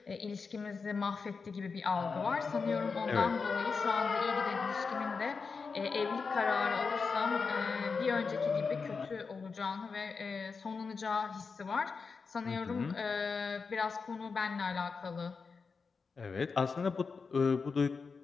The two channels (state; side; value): quieter; right; 5.0 dB